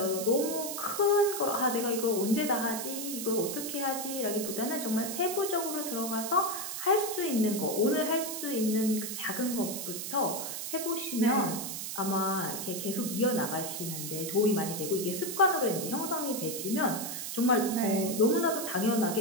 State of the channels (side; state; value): right; noise; hiss, 5 dB below the sound